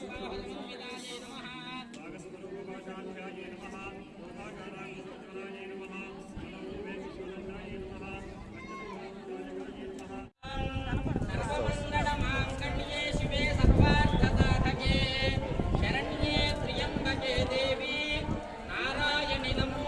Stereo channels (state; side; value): identical; both; correlation 1.00